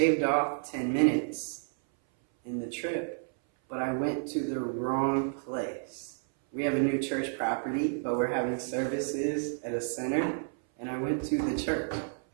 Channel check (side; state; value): left; silent; 57 dB below the other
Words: off 10 minutes in the trip, but I went to the wrong place. We have a new church property, but we're having services at a center, and I went to the church.